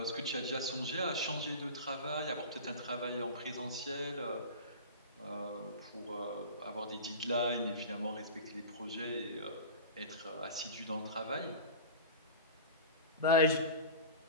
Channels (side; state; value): both; inverted; correlation -0.33